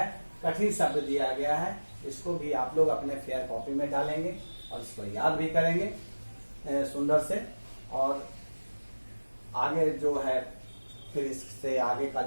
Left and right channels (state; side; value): inverted; both; correlation -1.00